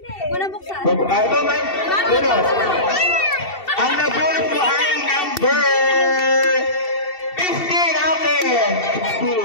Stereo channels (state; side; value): late; right; 2.7 ms